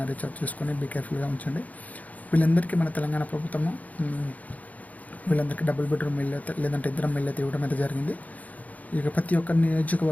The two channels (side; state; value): right; late; 0.075 ms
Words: రీఛార్జ్ చేసుకొని బీ కేర్ఫుల్గా ఉంచండి. వీళ్ళందరికీ మన తెలంగాణ ప్రభుత్వము వీళ్ళందరికీ డబుల్ బెడ్రూమ్ ఇల్లు అయితే లేదంటే ఇందిరమ్మ ఇల్లు అయితే ఇవ్వడం అయితే జరిగింది. ఇక ప్రతి ఒక్క